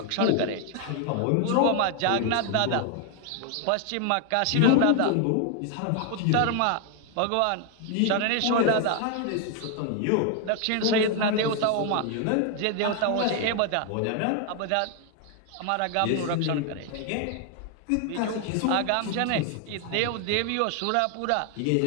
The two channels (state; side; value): different; both; correlation 0.00